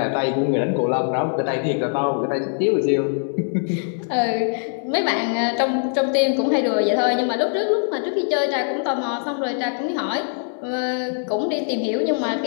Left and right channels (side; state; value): right; silent; digital silence